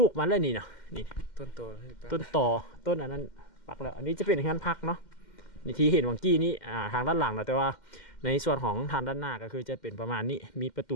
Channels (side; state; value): right; late; 2.1 ms